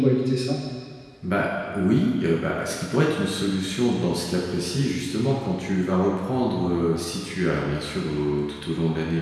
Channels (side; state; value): both; identical; correlation 1.00